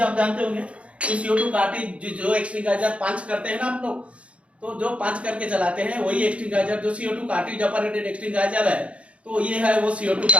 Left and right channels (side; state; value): left; late; 0.062 ms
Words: जानते होंगे। तो CO2 कार्टिज जो एक्सटिंगाइजर पंच करते हैं ना आप लोग, तो जो पंच करके चलाते हैं वही एक्सटिंगाइजर जो CO2 कार्टिज ऑपरेटेड एक्सटिंगाइजर है। तो ये है वो CO2